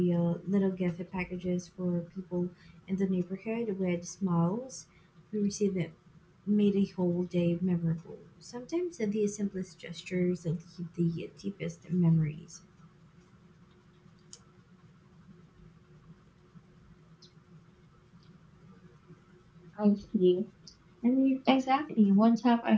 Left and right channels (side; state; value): both; identical; correlation 1.00